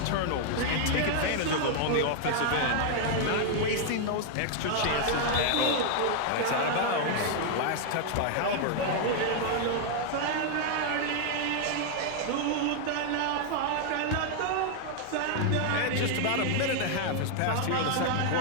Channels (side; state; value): both; different; correlation 0.00